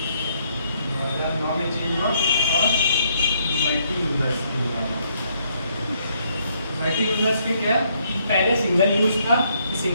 2009 में चेंज हुआ और मल्टी यूजर्स मल्टी यूजर्स के क्या, पहले सिंगल यूज था,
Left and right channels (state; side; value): inverted; both; correlation -0.70